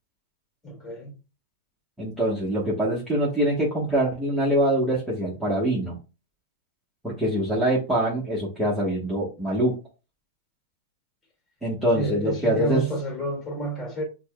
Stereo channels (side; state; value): both; normal; correlation 0.21